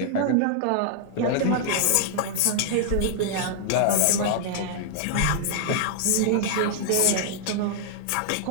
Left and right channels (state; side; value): different; both; correlation -0.01